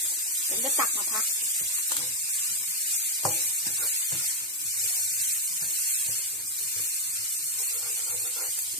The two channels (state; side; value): normal; both; correlation 0.01